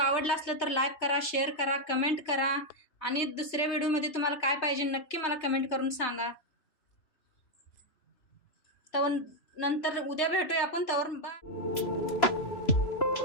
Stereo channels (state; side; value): late; right; 3.3 ms